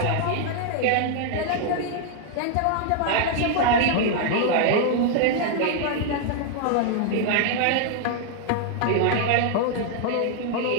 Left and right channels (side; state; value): both; different; correlation 0.00